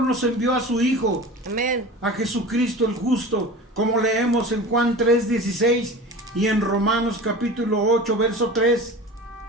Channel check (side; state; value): both; normal; correlation 0.35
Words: nos envió a su Hijo, Amén. a Jesucristo el justo, como leemos en Juan 3:16 y en Romanos capítulo 8, verso 3.